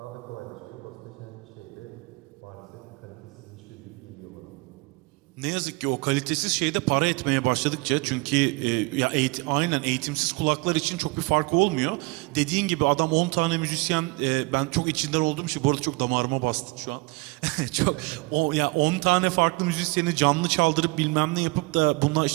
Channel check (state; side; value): quieter; left; 26.1 dB